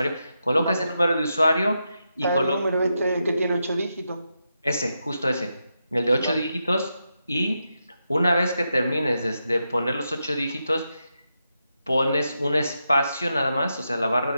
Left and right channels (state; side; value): inverted; both; correlation -0.86